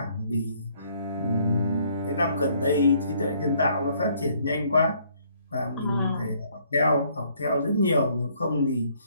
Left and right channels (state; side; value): inverted; both; correlation -0.65